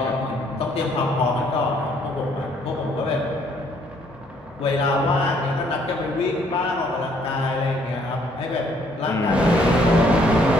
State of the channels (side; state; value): both; normal; correlation 0.65